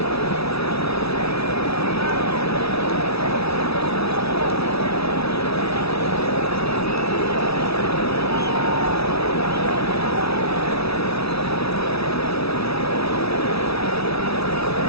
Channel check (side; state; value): right; late; 0.77 ms